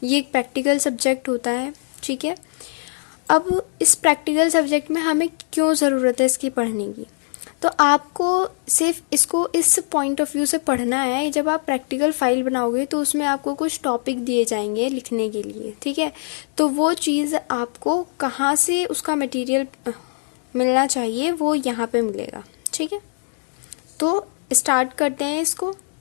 ये एक practical subject होता है, ठीक है. अब इस practical subject में हमें क्यों ज़रूरत है इसकी पढ़ने की, तो आपको सिर्फ इसको इस पॉइंट ऑफ व्यू से पढ़ना है. जब आप प्रैक्टिकल फाइल बनाओगे तो उसमें आपको कुछ टॉपिक दिए जाएंगे लिखने के लिए, ठीक है. तो वो चीज़ आपको कहाँ से उसका मटेरियल मिलना चाहिए वो यहाँ पे मिलेगा, ठीक है. तो स्टार्ट करते हैं इसको.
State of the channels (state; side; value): silent; right; digital silence